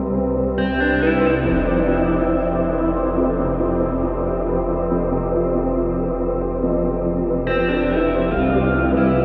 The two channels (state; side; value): identical; both; correlation 1.00